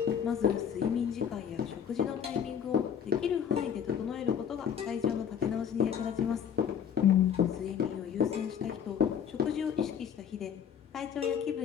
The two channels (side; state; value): right; quieter; 8.2 dB